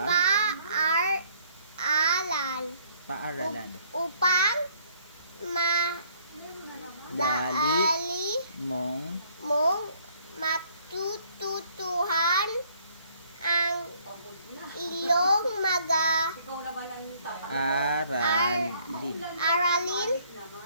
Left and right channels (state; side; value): inverted; both; correlation -0.62